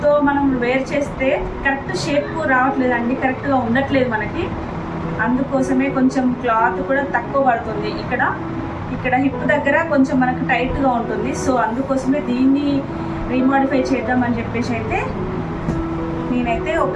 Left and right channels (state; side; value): identical; both; correlation 1.00